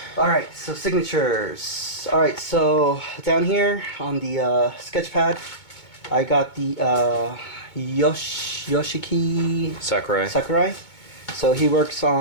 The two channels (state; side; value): late; right; 2.2 ms